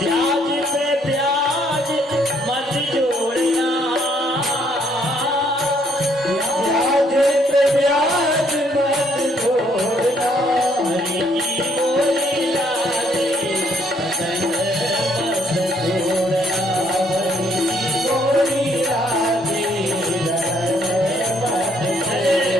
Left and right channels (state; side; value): normal; both; correlation 0.68